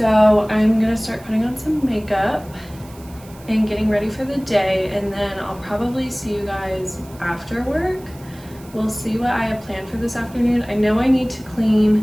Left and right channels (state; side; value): noise; right; hiss, 23 dB below the sound